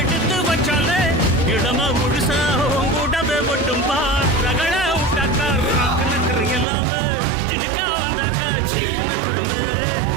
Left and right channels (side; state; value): left; drops out; at 6.7 s